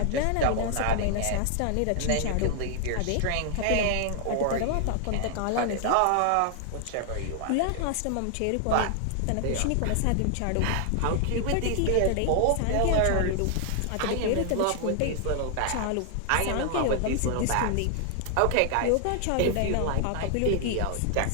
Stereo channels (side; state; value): both; different; correlation 0.00